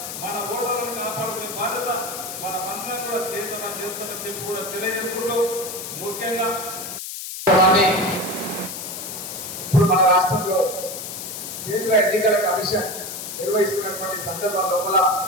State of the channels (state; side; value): noise; left; hiss, 8 dB below the sound